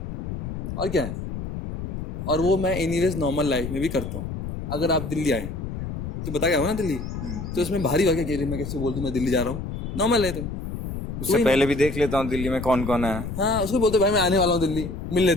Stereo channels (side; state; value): left; noise; rumble, 6 dB below the sound